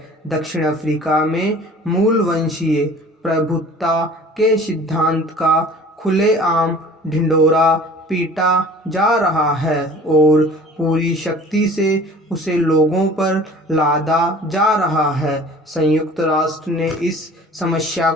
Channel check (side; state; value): both; normal; correlation 0.46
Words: दक्षिण अफ्रीका में मूल वंशीय प्रभुत्व के सिद्धांत का खुलेआम ढिंढोरा पीटा जा रहा है और पूरी शक्ति से उसे लोगों पर लादा जा रहा है। संयुक्त राष्ट्र ने इस समस्या